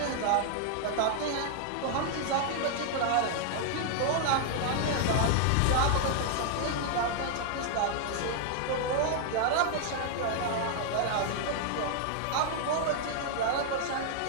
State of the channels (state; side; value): different; both; correlation 0.00